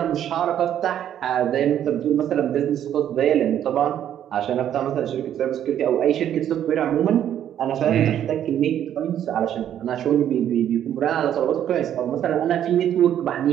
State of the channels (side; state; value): left; quieter; 10.4 dB